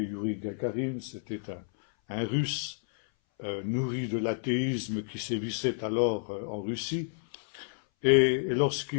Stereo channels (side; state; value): right; silent; 58 dB below the other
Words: Yuri Gagarin, c'était un Russe nourri de l'athéisme qui sévissait alors en Russie. Et